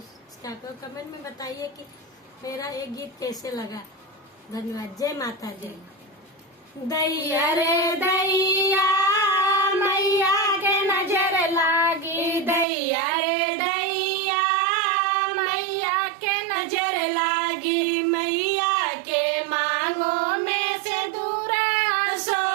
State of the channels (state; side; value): drops out; left; at 12.7 s